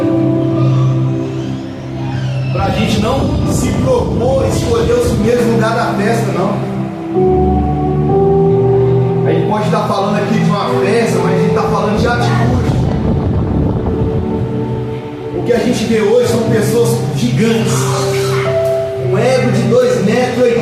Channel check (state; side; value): identical; both; correlation 1.00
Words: para a gente não se propor escolher os primeiros lugares da festa, não. A gente pode estar falando aqui de uma festa, mas a gente está falando de atitude. O que a gente vê hoje são pessoas gigantes, um ego de 2,80